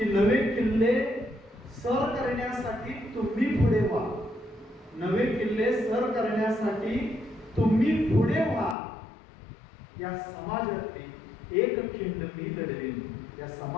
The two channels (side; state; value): right; drops out; at 8.8 s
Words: नवे किल्ले सर करण्यासाठी तुम्ही पुढे व्हा. नवे किल्ले सर करण्यासाठी तुम्ही पुढे व्हा. या समाजातली एक खिंड मी लढवीन. या